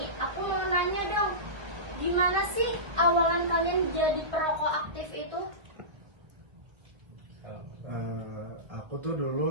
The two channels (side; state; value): left; late; 1.4 ms